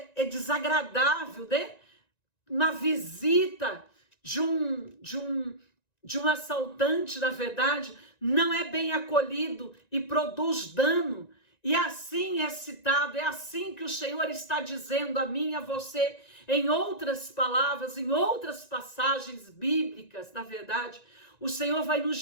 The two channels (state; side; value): late; right; 1.9 ms